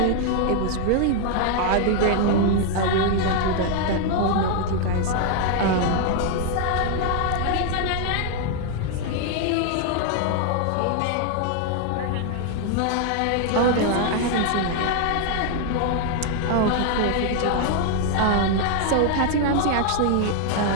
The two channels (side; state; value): both; different; correlation 0.00